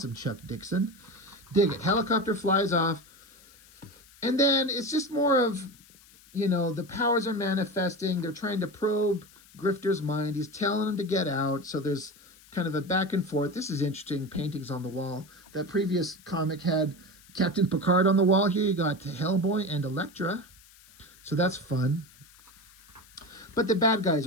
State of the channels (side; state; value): left; noise; hiss, 25 dB below the sound